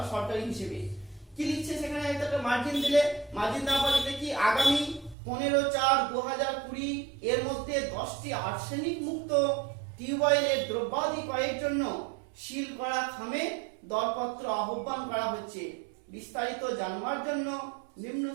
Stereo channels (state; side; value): drops out; left; at 5.2 s